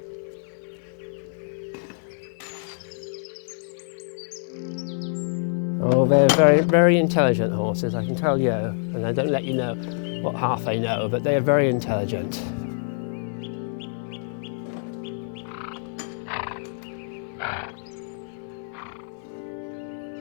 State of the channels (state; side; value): silent; right; digital silence